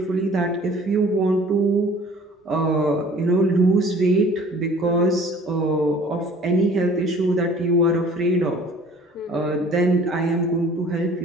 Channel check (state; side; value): normal; both; correlation 0.50